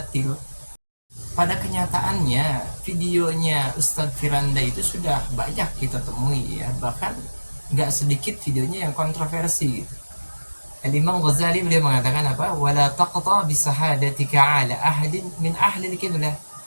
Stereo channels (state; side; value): inverted; both; correlation -1.00